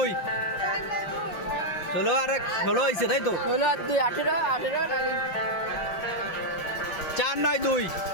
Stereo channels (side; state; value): right; late; 5.9 ms